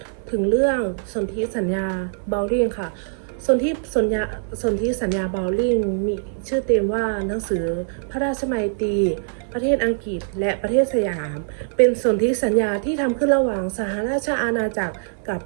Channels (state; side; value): silent; left; 64 dB below the other